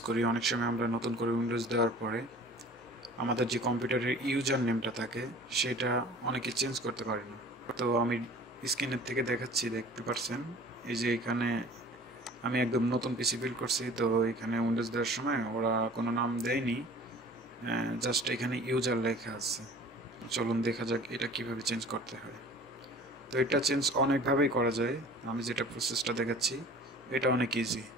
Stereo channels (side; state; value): both; normal; correlation 0.45